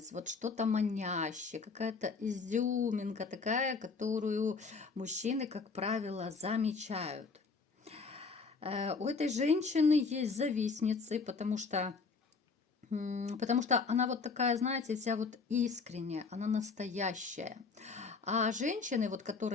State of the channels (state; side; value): quieter; right; 4.7 dB